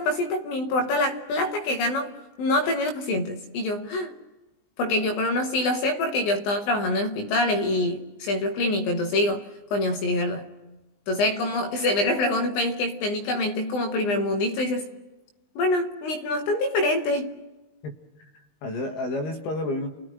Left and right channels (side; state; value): right; late; 20 ms